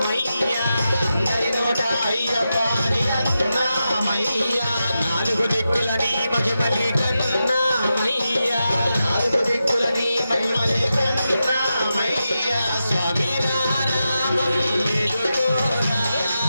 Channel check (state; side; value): inverted; both; correlation -0.90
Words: అందరి నోట అయ్యప్ప అని అన్నామయ్యా నాలుగు దిక్కుల నీ మహిమలే కన్నామయ్యా నాలుగు దిక్కుల నీ మహిమలే కన్నామయ్యా స్వామి రామం మేలుకోరా